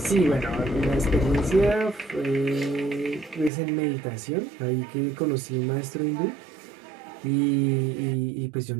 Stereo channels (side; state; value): left; drops out; at 3.5 s